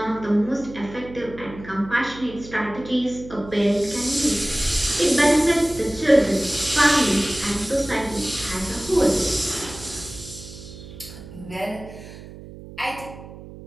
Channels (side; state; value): right; noise; hum, 15 dB below the sound